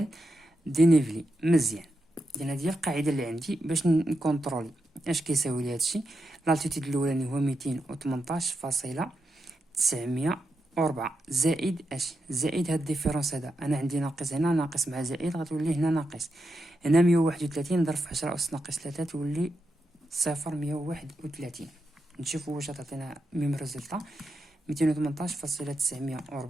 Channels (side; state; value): both; normal; correlation 0.86